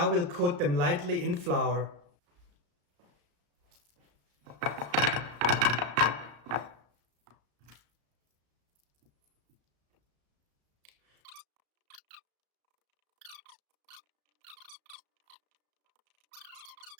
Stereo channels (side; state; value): left; late; 34 ms